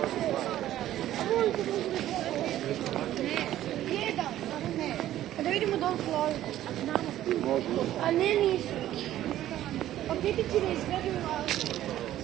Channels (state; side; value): quieter; left; 13.1 dB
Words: Da vidimo dole Floridu. A ne nisu. Pa gdje ti ne izgledaju?